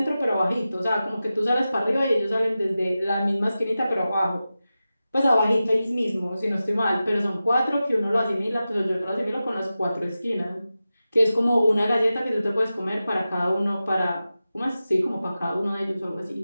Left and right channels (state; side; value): inverted; both; correlation -0.94